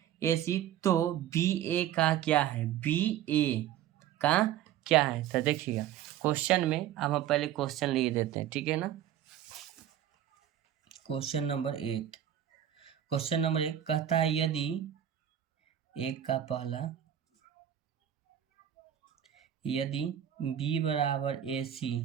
AC तो BA का क्या है? BA का क्या है? तो देखिएगा क्वेश्चन में, अब हम पहले क्वेश्चन लिख देते हैं, ठीक है ना। क्वेश्चन नंबर 1 कहता है यदि एक का पहला, यदि B =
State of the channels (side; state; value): left; quieter; 10.9 dB